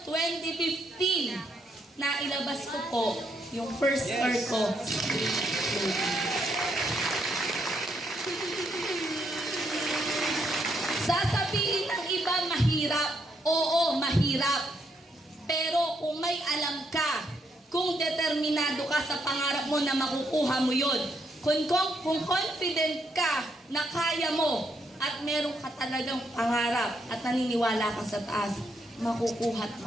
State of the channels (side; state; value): both; normal; correlation 0.76